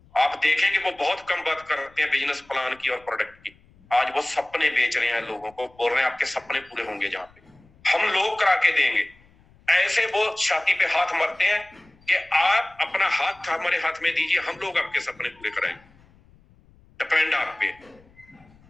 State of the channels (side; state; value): left; noise; rumble, 29 dB below the sound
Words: आप देखेंगे वो बहुत कम बात करते हैं बिजनेस प्लान की और प्रोडक्ट की। आज वो सपने बेच रहे हैं, लोगों को बोल रहे हैं आपके सपने पूरे होंगे, जहां पे हम लोग करा के देंगे। ऐसे वो छाती पे हाथ मारते हैं कि आप अपना हाथ हमारे हाथ में दीजिए, हम लोग आपके सपने पूरे कराएंगे, डिपेंड आप पे।